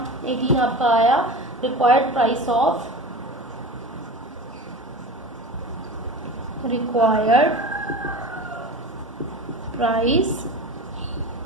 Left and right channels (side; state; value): both; normal; correlation 0.32